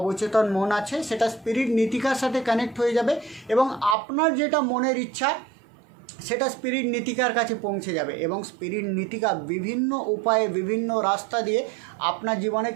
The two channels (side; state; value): left; drops out; at 4.0 s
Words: মন আছে সেটা স্পিরিট নীতিকার সাথে কানেক্ট হয়ে যাবে এবং আপনার যেটা মনের ইচ্ছা সেটা স্পিরিট নীতিকার কাছে পৌঁছে যাবে এবং স্পিরিট নীতিকা বিভিন্ন উপায়ে, বিভিন্ন রাস্তা দিয়ে আপনার জীবনে